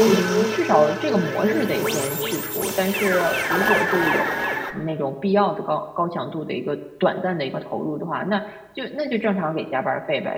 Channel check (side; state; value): both; identical; correlation 1.00